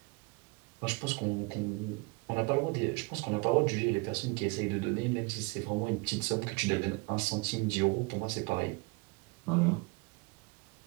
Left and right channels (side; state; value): left; quieter; 27.8 dB